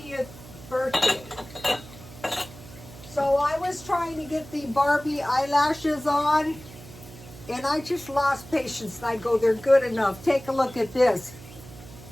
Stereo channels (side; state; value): right; noise; hum, 18 dB below the sound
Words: birthday. So I was trying to get the Barbie eyelashes on, and I just lost patience. And I go, they're good enough. Take a look at this.